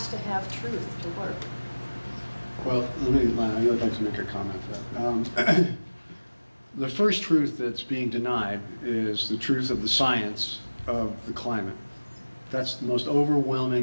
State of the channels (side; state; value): both; inverted; correlation -1.00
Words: to have truth to work. Well, I'd like to make a comment to that. The first truth that's being denied is the truth of the science of the climate. That's the most